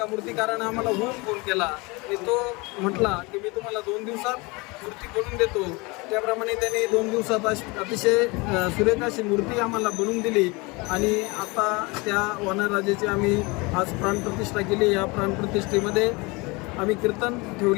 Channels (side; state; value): right; quieter; 26.0 dB